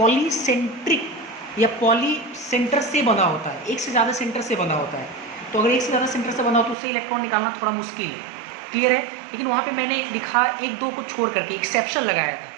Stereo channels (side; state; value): left; drops out; at 6.8 s